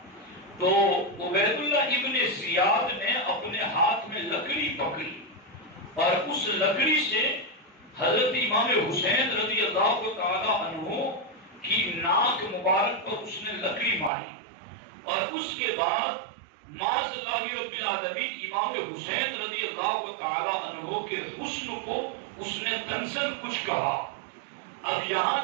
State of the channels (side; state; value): left; drops out; at 14.1 s